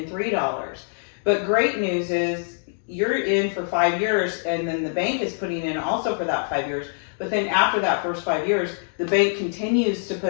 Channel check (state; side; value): silent; right; digital silence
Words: $3. But great news is you're in for 5 years and then the bank is putting in also for that 5 years. But then after that first 5 years, the bank continues to